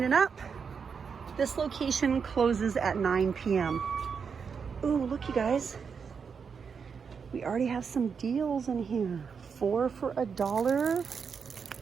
up. This location closes at 9 p.m. Ooh, look you guys. We already have some deals in here. 4 for $1.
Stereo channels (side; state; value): left; quieter; 6.1 dB